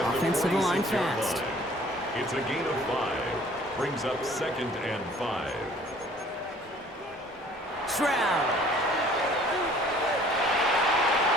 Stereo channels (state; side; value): normal; both; correlation 0.54